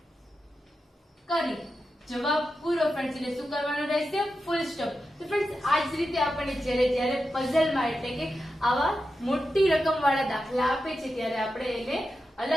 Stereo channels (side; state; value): both; normal; correlation 0.90